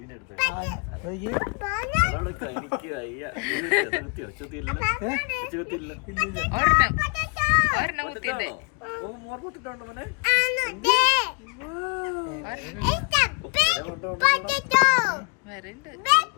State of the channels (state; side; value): quieter; right; 35.4 dB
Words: എടുത്തു. ഒരെണ്ണം കുത്തിണ്ട്. വരണ്ട്